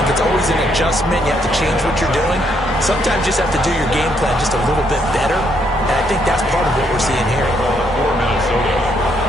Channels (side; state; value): both; normal; correlation 0.72